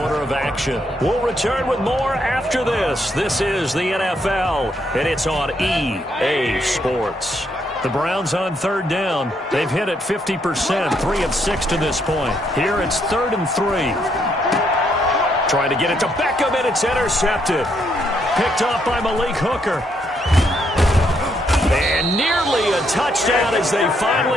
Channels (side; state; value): both; normal; correlation 0.74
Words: of action. We'll return with more after this. This is the NFL, and it's on EA Sports. The Browns on 3rd down. They've hit it 50%, 3 of 6 to this point. Here it's 3rd and 3. Trying to get it to Beckham, and it's intercepted. Picked off by Malik Hooker. And nearly a touchdown as they